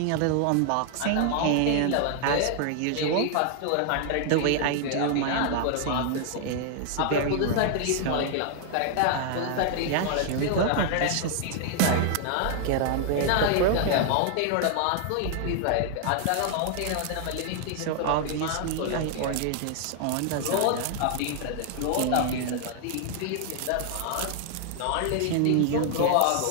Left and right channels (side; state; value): both; different; correlation 0.00